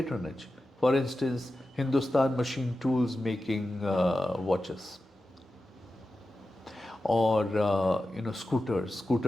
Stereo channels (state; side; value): normal; both; correlation 0.93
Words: For instance, Hindustan Machine Tools making watches, or